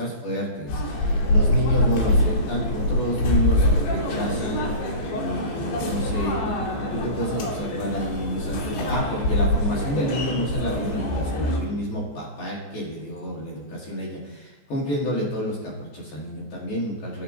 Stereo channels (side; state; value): right; late; 15 ms